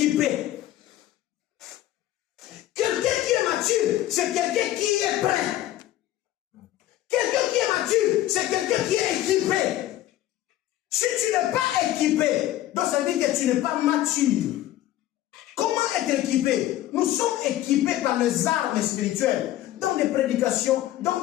Quelqu'un qui est mature, c'est quelqu'un qui est prêt. Quelqu'un qui est mature, c'est quelqu'un qui est équipé. Si tu n'es pas équipé, donc ça veut dire que tu n'es pas mature. Comment être équipé? Nous sommes équipés par les armes spirituelles, dans des prédications, dans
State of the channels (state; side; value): quieter; right; 14.0 dB